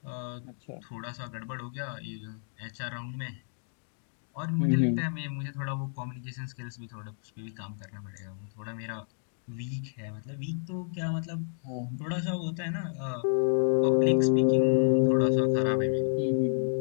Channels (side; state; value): right; silent; digital silence